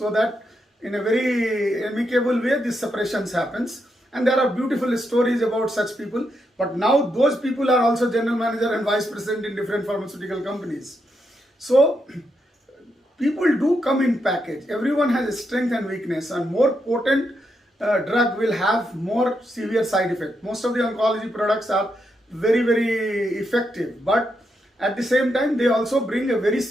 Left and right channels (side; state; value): both; normal; correlation 0.82